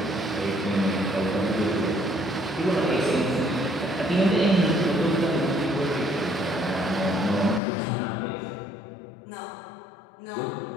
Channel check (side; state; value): right; drops out; at 7.6 s